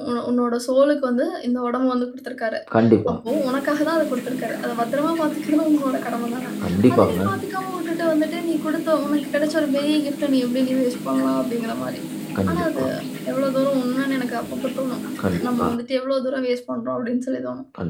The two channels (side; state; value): both; identical; correlation 1.00